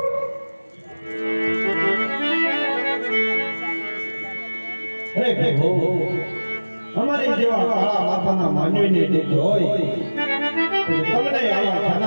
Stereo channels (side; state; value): both; inverted; correlation -1.00